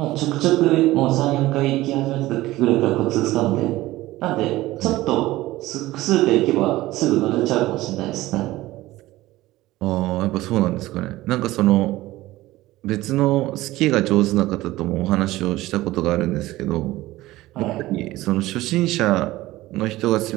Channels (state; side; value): quieter; left; 17.4 dB